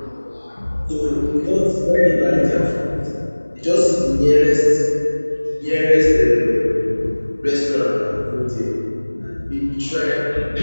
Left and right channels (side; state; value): both; inverted; correlation -1.00